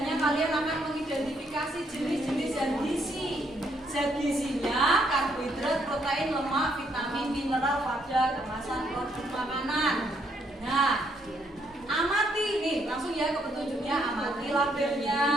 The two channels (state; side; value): normal; both; correlation 0.72